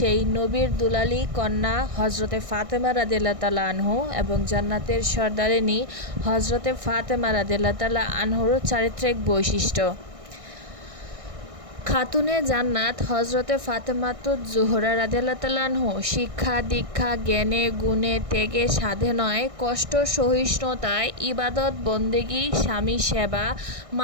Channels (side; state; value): left; late; 1.6 ms